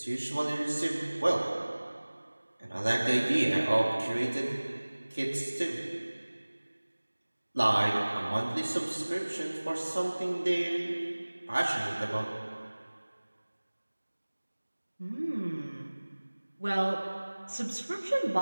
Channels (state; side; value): inverted; both; correlation -1.00